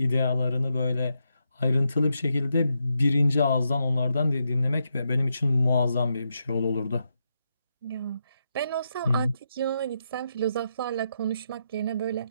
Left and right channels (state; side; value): inverted; both; correlation -0.83